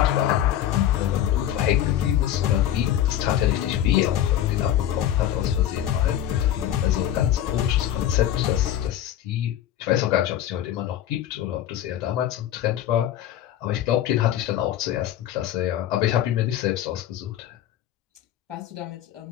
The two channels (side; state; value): right; quieter; 11.6 dB